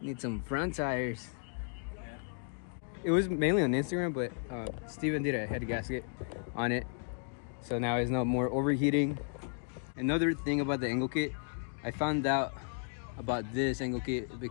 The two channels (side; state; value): right; silent; 55 dB below the other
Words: need some front tires. It was mainly on Instagram, but Steven did a head gasket on it, so now it's no more overheating. Another thing about the angle kit, I found out about this angle kit